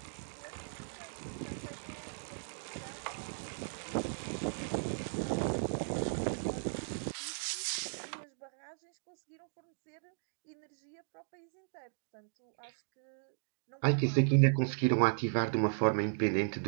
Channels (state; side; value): silent; left; digital silence